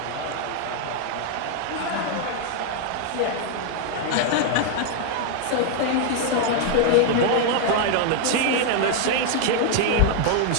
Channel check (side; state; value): both; different; correlation 0.00